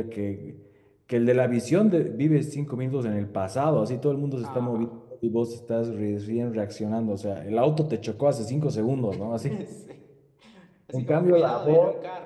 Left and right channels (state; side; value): identical; both; correlation 1.00